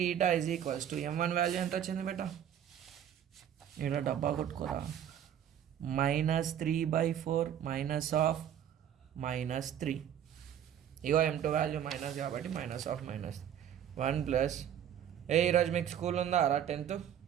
m1 value ఎంత వచ్చింది బేటా? ఇక్కడ డబ్బా కొట్టుకోరా. -3/4 -3. ఇగో m2 వాల్యూ మైనస్ కాబట్టి -1 ప్లస్. ఈరోజు మీకు స్కూల్ ఉందా రా 10th?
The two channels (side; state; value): left; quieter; 9.8 dB